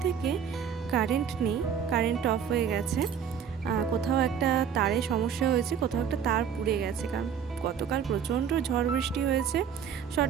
থেকে কারেন্ট নেই, কারেন্ট অফ হয়ে গেছে। কোথাও একটা তারে সমস্যা হয়েছে, কোথাও একটা তার পুড়ে গেছে, কারণ গতকাল প্রচণ্ড ঝড় বৃষ্টি হয়েছে।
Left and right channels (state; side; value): quieter; left; 7.7 dB